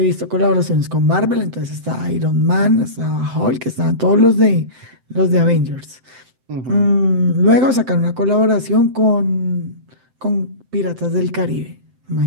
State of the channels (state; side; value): late; left; 7.8 ms